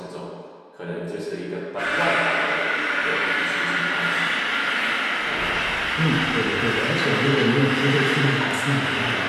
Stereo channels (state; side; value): identical; both; correlation 1.00